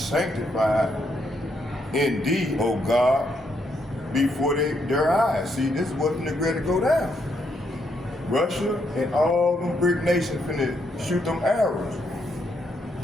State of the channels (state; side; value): normal; both; correlation 0.76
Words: in thee, O God, before their eyes. See, this is what's going to go down. Russia and all them brick nations finna shoot them arrows